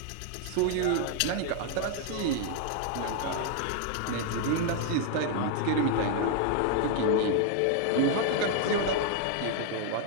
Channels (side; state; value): both; different; correlation 0.00